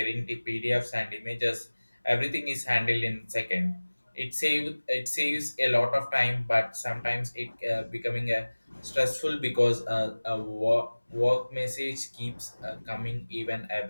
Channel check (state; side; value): inverted; both; correlation -1.00